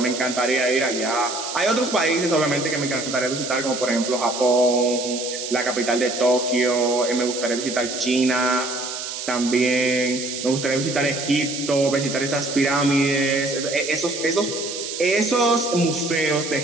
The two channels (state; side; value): noise; right; hiss, 7 dB below the sound